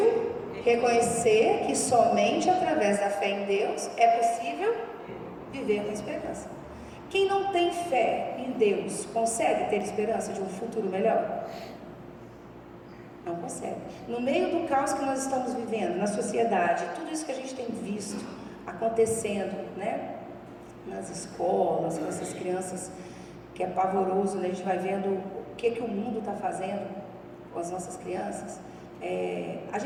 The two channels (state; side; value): identical; both; correlation 1.00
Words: Reconhecer que somente através da fé em Deus é possível viver com esperança. Quem não tem fé em Deus consegue ter esperança de um futuro melhor? Não consegue. No meio do caos que nós estamos vivendo, na sociedade, tudo isso que a gente tem visto acontecendo, né? Nas escolas, com essas crianças, que é pavoroso, né? A gente vai vendo o que o mundo está fazendo com as nossas crianças. A